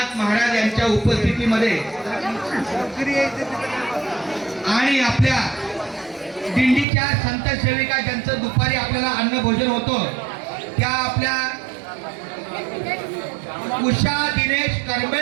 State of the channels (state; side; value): drops out; left; at 6.9 s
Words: महाराज यांच्या उपस्थितीमध्ये आणि आपल्या दिंडीच्या संत सेविका ज्यांचं दुपारी आपल्याला अन्न भोजन होतं त्या आपल्या उषा दिनेश